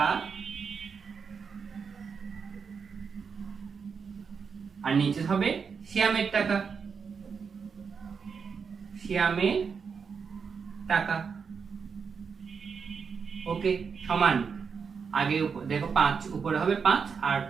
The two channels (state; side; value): quieter; left; 5.9 dB